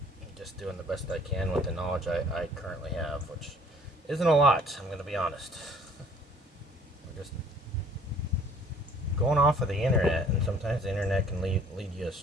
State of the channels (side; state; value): both; normal; correlation 0.55